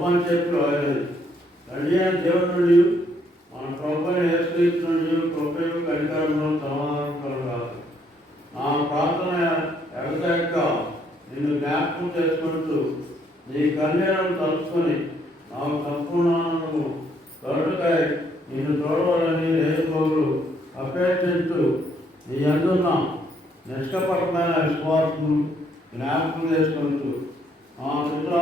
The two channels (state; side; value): normal; both; correlation 0.69